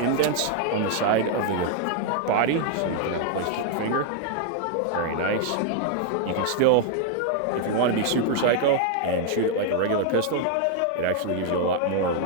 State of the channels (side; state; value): both; different; correlation 0.00